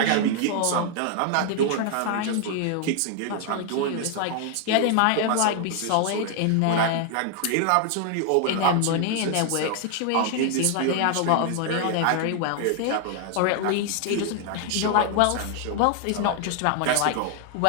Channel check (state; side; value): different; both; correlation 0.00